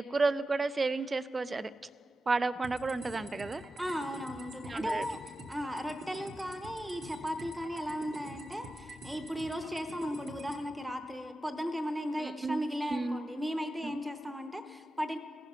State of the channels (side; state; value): both; normal; correlation 0.92